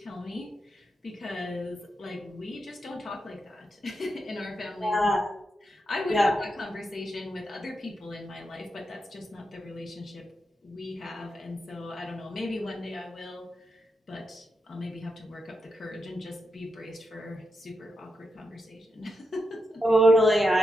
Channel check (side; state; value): both; normal; correlation 0.85